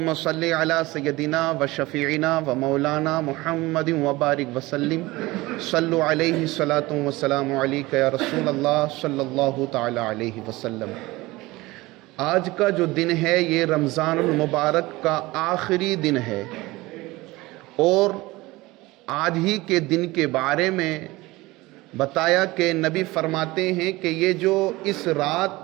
صلی علی سیدنا و شفیعنا و مولانا محمد وبارک وسلم، صلو علیہ الصلاۃ والسلام علیک یا رسول اللہ صلی اللہ تعالی علیہ وسلم۔ آج کا جو دن ہے یہ رمضان المبارک کا آخری دن ہے، اور آج ہی کے دن کے بارے میں بتایا کہ نبی فرماتے ہیں کہ یہ جو اس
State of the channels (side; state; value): left; quieter; 20.5 dB